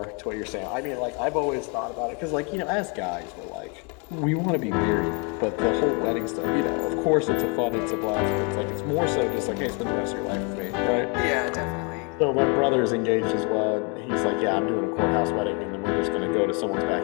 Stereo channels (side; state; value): right; quieter; 33.9 dB